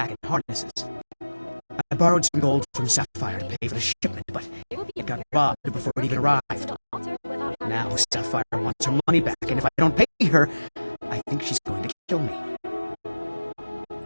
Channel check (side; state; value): both; inverted; correlation -1.00